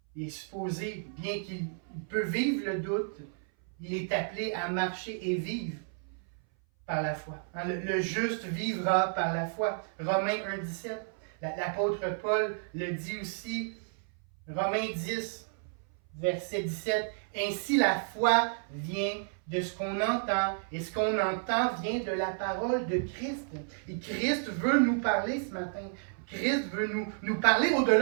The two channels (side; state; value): left; silent; 57 dB below the other